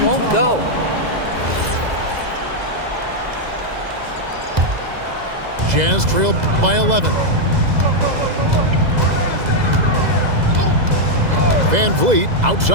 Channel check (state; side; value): late; left; 2.0 ms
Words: go. Jazz trailed by 11. Van Vliet